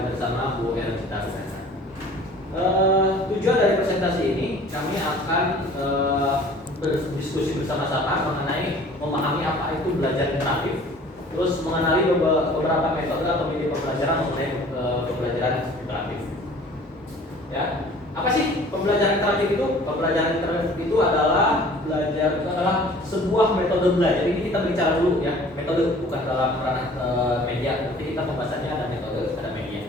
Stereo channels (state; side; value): normal; both; correlation 0.49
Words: bersama Bu Ercita. Tujuan dari presentasi ini kami akan berdiskusi bersama-sama mengenai memahami apa itu belajar interaktif, terus mengenali beberapa metode atau media pembelajaran mengenai pembelajaran interaktif. Ya, apa sih pembelajaran interaktif itu? Pembelajaran interaktif itu adalah sebuah metode belajar. Ini kita bicara dulu ya, metode bukan dalam ranah media. Nanti kita pembahasannya ada metode, ada media.